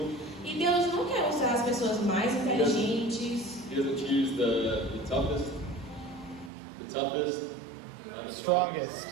E Deus não quer usar as pessoas mais inteligentes, He doesn't choose the toughest, the strongest.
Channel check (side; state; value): left; drops out; at 6.5 s